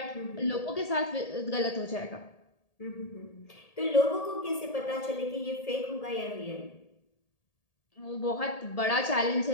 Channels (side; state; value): right; late; 1.8 ms